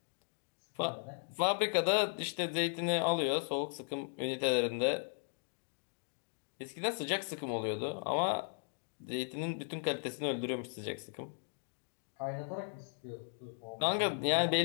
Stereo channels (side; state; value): right; silent; digital silence